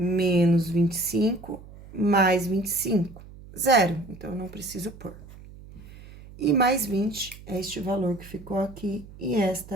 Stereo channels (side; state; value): right; noise; hum, 18 dB below the sound